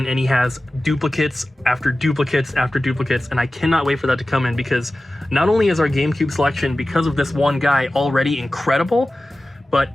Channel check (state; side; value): normal; both; correlation 0.96